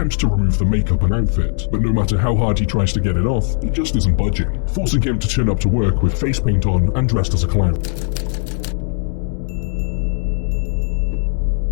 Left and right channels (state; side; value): silent; right; digital silence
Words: to remove the makeup and outfit. But no matter how hard he tries to get it off, it just isn't budging, forcing him to turn up to work with face paint on and dressed as a clown.